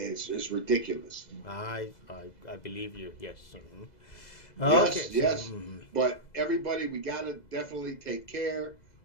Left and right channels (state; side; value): late; right; 2.0 ms